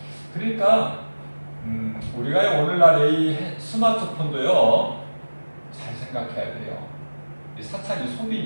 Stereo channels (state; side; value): inverted; both; correlation -1.00